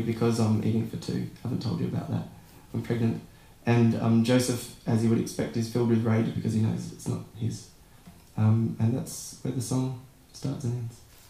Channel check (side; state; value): both; identical; correlation 1.00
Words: I'm eating for 2. I haven't told you about that. I'm pregnant. And Joseph, as you would expect, is filled with rage because he knows it's not his. And that's where the song starts and ends.